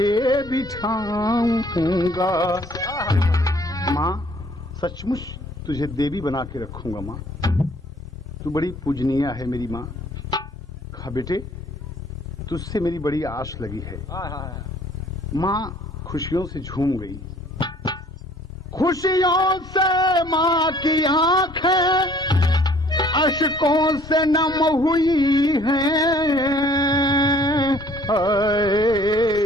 बिठाऊंगा। माँ सचमुच तुझे देवी बना के रखूंगा माँ, तू बड़ी पूजनीय है मेरी माँ। कहा बेटे तुझसे मेरी बड़ी आस लगी है। माँ खुशियों से झूम गई। खुशियों से माँ की आंखें अश्कों से नम हुई हैं।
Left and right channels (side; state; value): both; normal; correlation 0.57